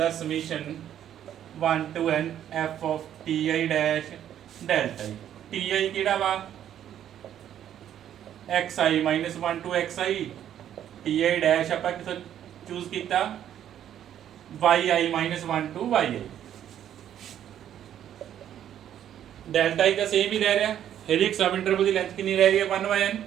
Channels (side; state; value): left; quieter; 10.5 dB